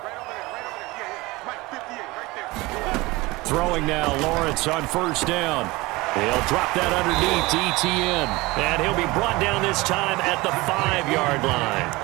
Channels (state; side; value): quieter; left; 21.9 dB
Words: Throwing now, Lawrence on 1st down. He'll drop that underneath to ETN. And he'll be brought down this time at the 5-yard